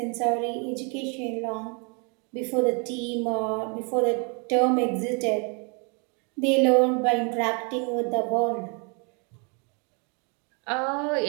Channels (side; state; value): left; quieter; 34.8 dB